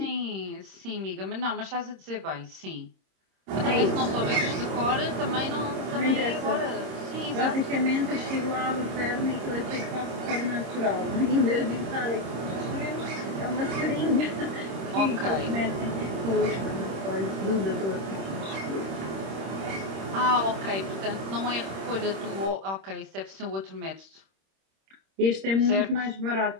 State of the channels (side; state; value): left; late; 26 ms